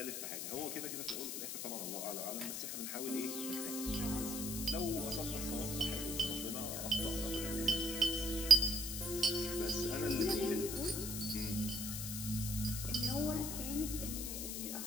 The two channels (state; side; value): noise; left; hiss, 4 dB below the sound